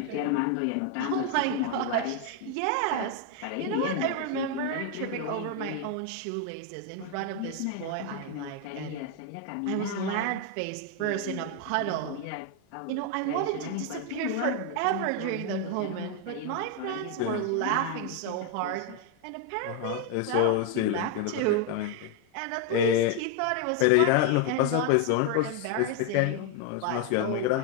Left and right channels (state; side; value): different; both; correlation 0.01